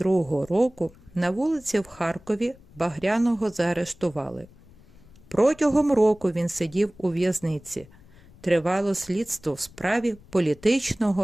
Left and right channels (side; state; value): left; noise; rumble, 25 dB below the sound